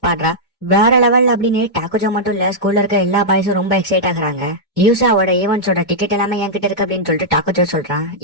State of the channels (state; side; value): normal; both; correlation -0.09